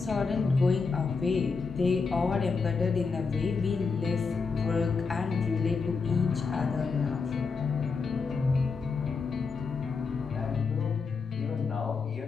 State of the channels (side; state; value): right; quieter; 4.8 dB